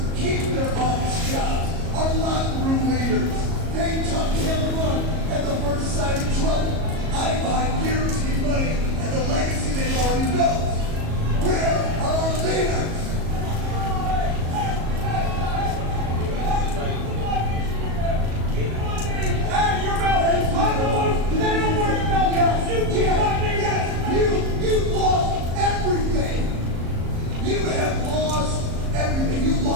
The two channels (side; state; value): left; late; 37 ms